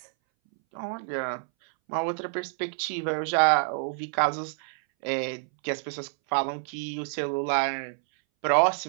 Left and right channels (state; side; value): silent; left; 60 dB below the other